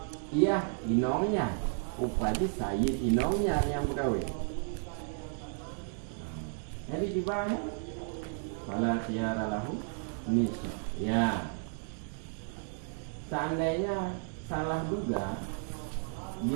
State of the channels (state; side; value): silent; left; 56 dB below the other